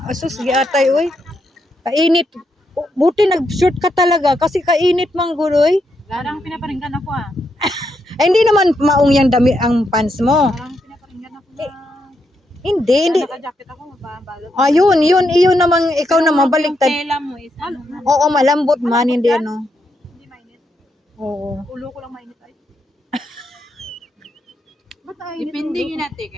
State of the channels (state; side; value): normal; both; correlation 0.81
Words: asus giatay, oy. Kainit. Buti nag-short ka talaga kasi kainit man guloy. Larang pinaparinggan ako ah. Ay, hindi naman maong yang dami ang pants mo. Larang pinaparinggan ako na. Hindi. Naka-jacket ako, mababalot. Yun namang ikaw na mabaliktad. Yung tela mo is ano? Oo, malambot man, hindi ano. Hindi mainit. Oo. Ulo ko lang mainit ay. Depende yun natin